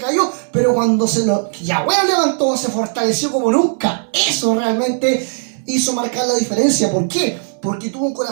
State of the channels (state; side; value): silent; left; 68 dB below the other